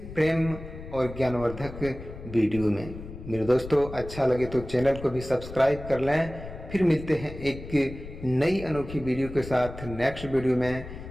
प्रेम और ज्ञानवर्धक वीडियो में। मेरे दोस्तों, अच्छा लगे तो चैनल को भी सब्सक्राइब कर लें। फिर मिलते हैं एक नई अनोखी वीडियो के साथ नेक्स्ट वीडियो में।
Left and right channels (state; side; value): noise; left; rumble, 12 dB below the sound